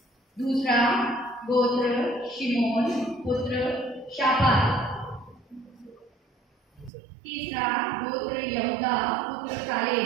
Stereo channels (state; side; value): drops out; left; at 6.9 s